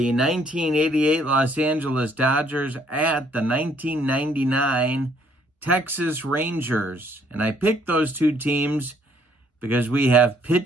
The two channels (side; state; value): both; normal; correlation 0.65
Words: 1988 Los Angeles Dodgers at the 1999 Texas Rangers. And I picked those two teams because we have